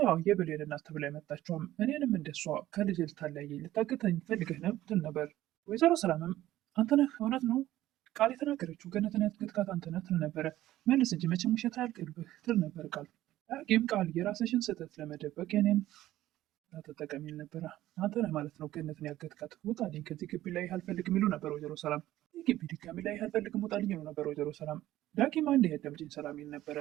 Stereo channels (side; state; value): left; quieter; 14.6 dB